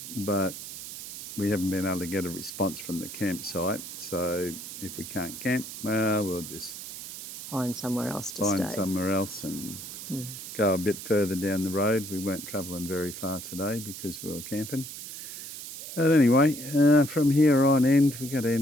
but we haven't been able to get a response from the campsite. So if we can't camp, well, we'll just Find somewhere else to stay. Find somewhere else and go a bit further down the road. We weren't travelling very far today because we were camping. But anyway, from here on end, we've got to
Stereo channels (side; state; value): right; noise; hiss, 10 dB below the sound